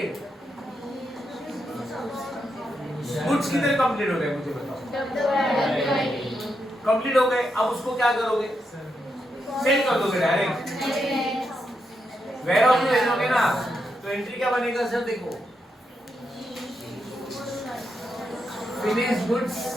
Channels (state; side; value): normal; both; correlation 0.83